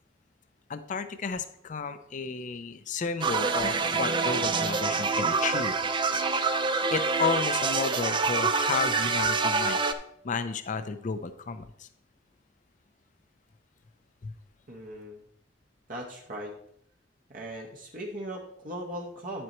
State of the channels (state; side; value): normal; both; correlation 0.00